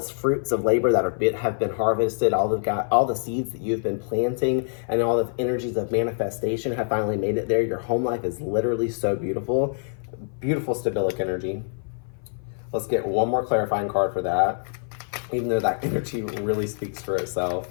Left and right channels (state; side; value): silent; right; 56 dB below the other